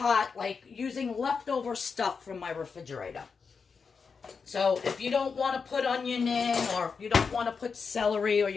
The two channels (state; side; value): quieter; right; 5.4 dB